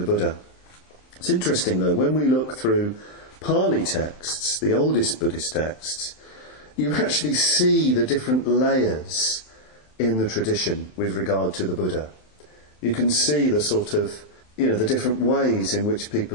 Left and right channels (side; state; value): right; late; 27 ms